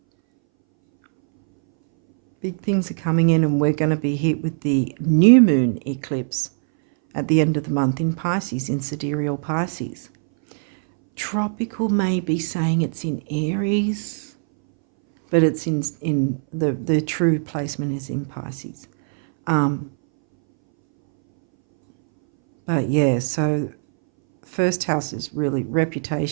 Big things are coming in, and we're going to be hit with the new moon eclipse at the end of the month in Pisces, in sidereal Pisces. Tropical may be saying it's in Aries, but it's in the true placement is in Pisces. But yeah, so first house is really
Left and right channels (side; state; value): left; silent; 62 dB below the other